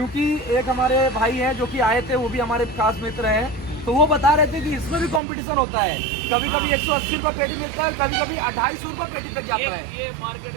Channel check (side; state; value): left; drops out; at 5.2 s